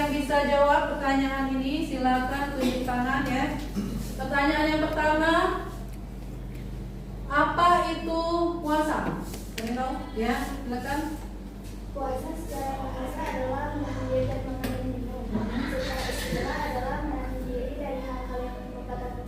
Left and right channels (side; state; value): both; identical; correlation 1.00